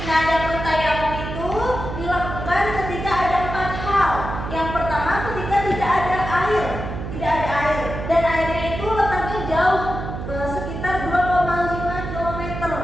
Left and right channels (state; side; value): noise; right; hum, 7 dB below the sound